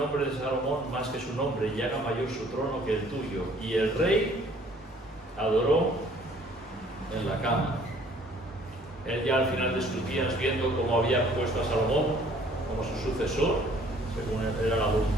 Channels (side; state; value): both; normal; correlation 0.57